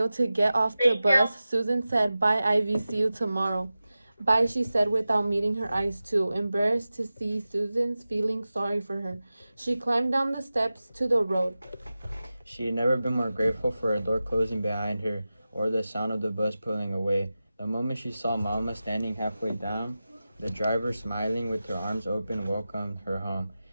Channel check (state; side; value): inverted; both; correlation -0.95